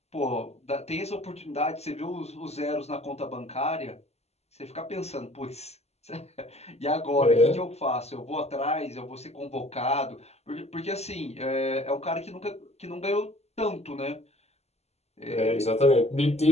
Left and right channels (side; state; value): right; late; 0.31 ms